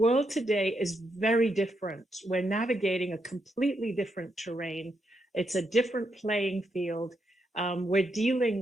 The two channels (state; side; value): normal; both; correlation 0.81